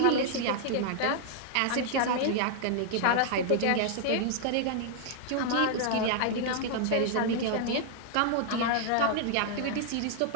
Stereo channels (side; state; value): both; different; correlation -0.01